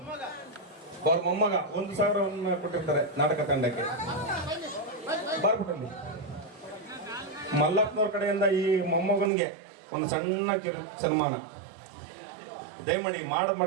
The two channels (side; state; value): left; drops out; at 9.3 s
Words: ಅವ್ರ ಮೊಮ್ಮಗ 1,000 ಕೊಟ್ಟಿರ್ತಾರೆ ನಾಟಕ ತಂಡಕ್ಕೆ. ಬರ್ಬಿಟ್ಟಲ್ಲಿ ಮಲ್ಲಪ್ಪನವ್ರ ಕಡೆಯಿಂದ ಈ ಮೊಮ್ಮಗನಿಗೆ ಒಂದು ಸಣ್ಣ ಸನ್ಮಾನ ದಯಮಾಡಿ